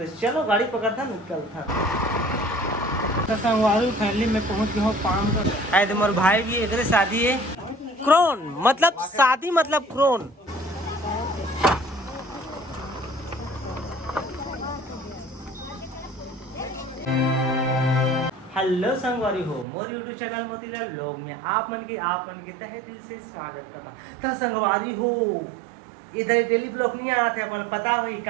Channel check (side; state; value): left; drops out; at 19.7 s